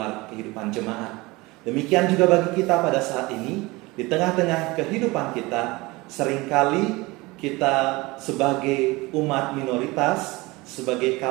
kehidupan jemaat. Demikian juga bagi kita pada saat ini, di tengah-tengah kehidupan kita, seringkali kita sebagai umat minoritas, sebagai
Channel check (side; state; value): left; quieter; 22.5 dB